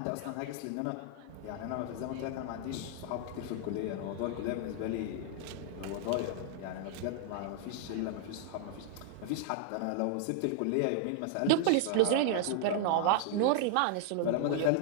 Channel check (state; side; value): different; both; correlation 0.00